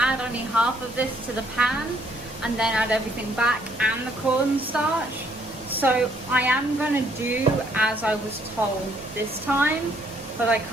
add only half of this to the pan and then add everything back and the cornstarch. So I am going to do as I was told this time, but I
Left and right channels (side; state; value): both; normal; correlation 0.67